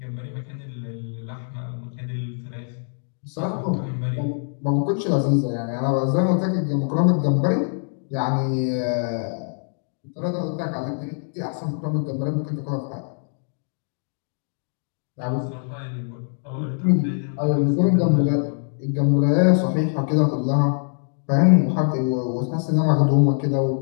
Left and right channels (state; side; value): silent; right; 62 dB below the other